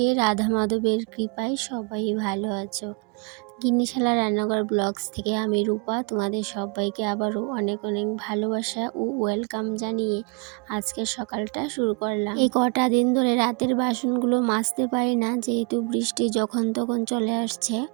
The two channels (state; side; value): quieter; left; 31.4 dB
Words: রাধা মাধবের কৃপায় সবাই ভালো আছো। গিন্নিশালা রান্নাঘর ব্লগস থেকে আমি রূপা তোমাদের সবাইকে আবারও অনেক অনেক ভালোবাসা ও ওয়েলকাম জানিয়ে আজকের সকালটা শুরু করলাম। এই কটা দিন ধরে রাতের বাসনগুলো মাজতে পারি না, যেহেতু বৃষ্টি যখন তখন চলে আসছে।